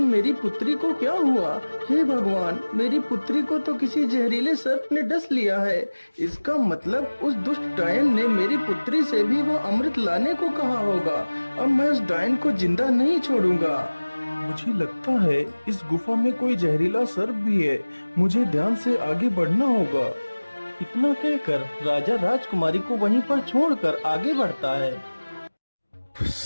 मेरी पुत्री को क्या हुआ? हे भगवान, मेरी पुत्री को तो किसी जहरीले सर्प ने डस लिया है। इसका मतलब उस दुष्ट डायन ने मेरी पुत्री से भी वो अमृत लाने को कहा होगा। अब मैं उस डायन को जिंदा नहीं छोड़ूंगा। मुझे लगता है इस गुफा में कोई जहरीला सर्प भी है, मुझे ध्यान से आगे बढ़ना होगा। इतना कहकर राजा राजकुमारी को वहीं पर छोड़कर आगे बढ़ता है।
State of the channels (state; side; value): inverted; both; correlation -1.00